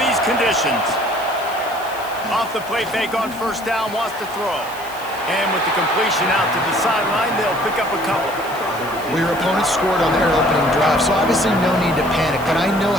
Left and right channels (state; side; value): noise; left; hiss, 18 dB below the sound